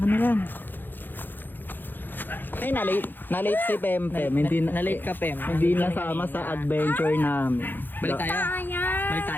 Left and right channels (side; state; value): right; late; 0.092 ms